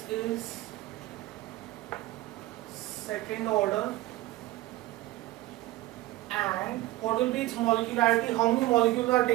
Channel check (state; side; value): quieter; left; 17.4 dB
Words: is second order, and what will be its molecularity? How many molecules are